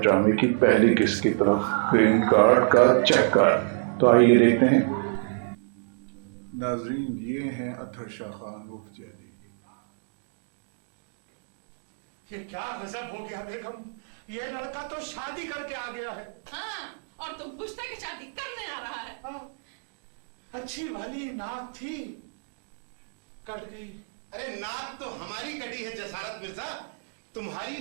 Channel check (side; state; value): left; silent; digital silence